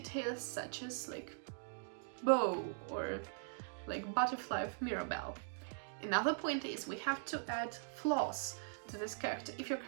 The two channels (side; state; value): left; silent; digital silence